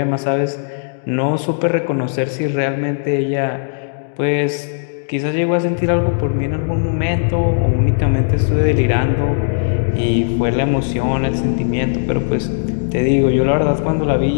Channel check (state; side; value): silent; right; digital silence